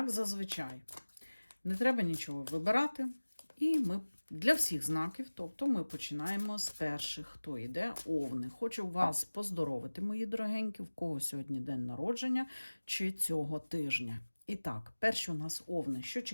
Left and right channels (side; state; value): both; inverted; correlation -1.00